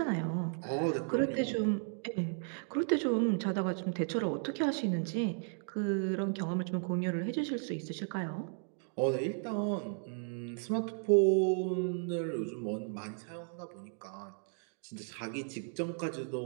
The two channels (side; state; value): left; silent; 55 dB below the other